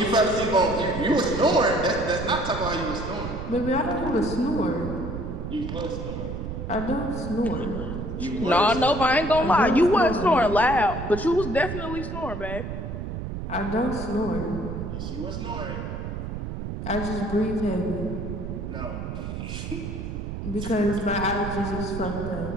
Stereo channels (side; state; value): right; noise; rumble, 6 dB below the sound